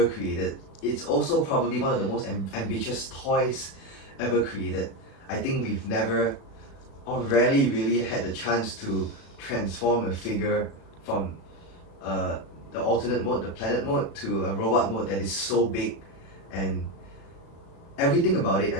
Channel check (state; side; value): late; right; 36 ms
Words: created, it's also probably one of the most ambitious toys ever created. I think we've never or rarely really had the chance to transform a figure from the alternate mode, the planet mode, to a robot mode that is so big, and everything about it.